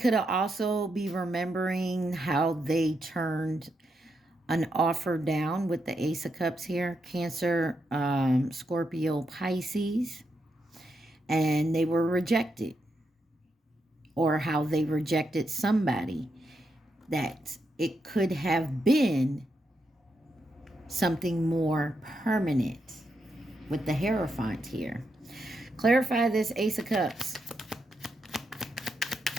also be remembering how they turned an offer down with the Ace of Cups here. Cancer, Scorpio, Pisces. And they were rejected. or how they rejected somebody, that it could have been something more permanent with the Hierophant here. Clarify this Ace of Cups.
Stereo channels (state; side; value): normal; both; correlation 0.83